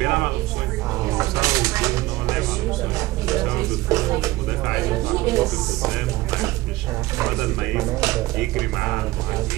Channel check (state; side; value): quieter; left; 18.4 dB